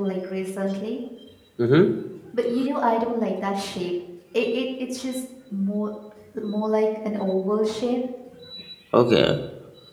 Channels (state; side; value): identical; both; correlation 1.00